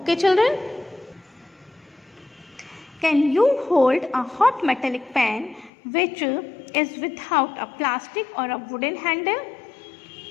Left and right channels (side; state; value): right; drops out; at 5.7 s